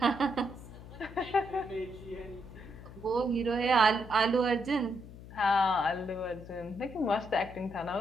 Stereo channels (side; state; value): left; noise; hum, 15 dB below the sound